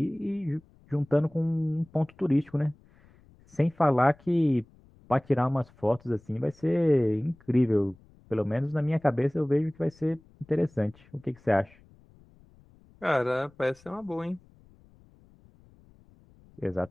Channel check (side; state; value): left; noise; rumble, 28 dB below the sound